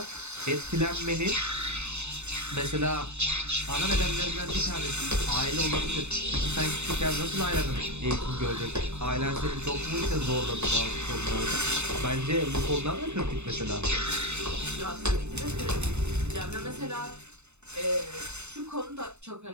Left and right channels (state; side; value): late; left; 0.82 ms